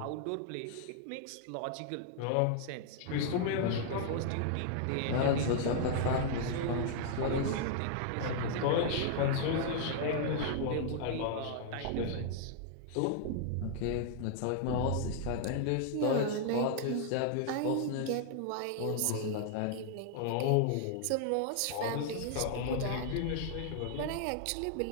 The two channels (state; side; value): different; both; correlation 0.00